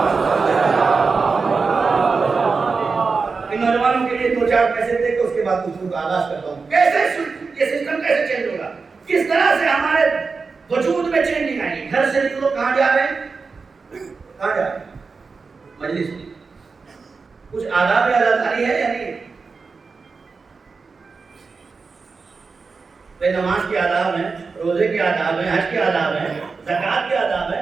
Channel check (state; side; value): quieter; left; 4.6 dB